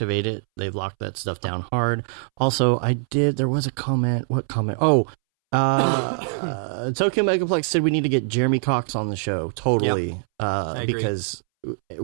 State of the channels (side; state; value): left; silent; 63 dB below the other